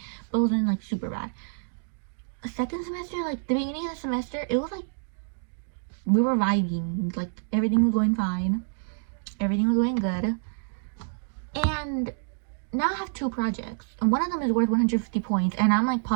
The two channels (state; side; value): silent; left; digital silence